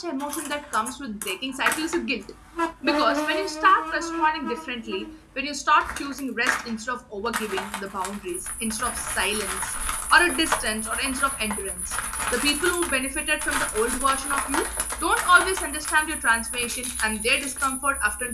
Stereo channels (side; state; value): both; identical; correlation 1.00